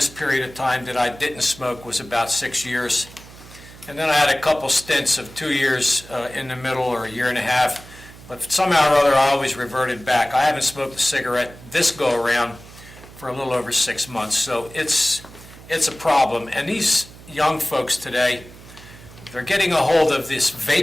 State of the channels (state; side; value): noise; right; hum, 19 dB below the sound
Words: period of time that I didn't smoke was about 6 years. and then I had a couple stints of 2 years in the middle, or a year and a half, but somehow or other I always reverted back. I haven't smoked a cigarette this go-around for a little over 6 months, so it's a problem. And these young folks today, they're getting a hold of this